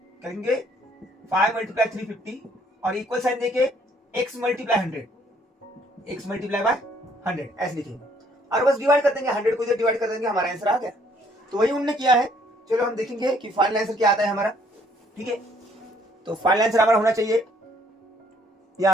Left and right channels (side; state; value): both; normal; correlation 0.64